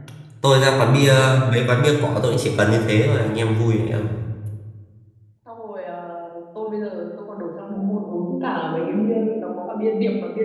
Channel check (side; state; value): both; identical; correlation 1.00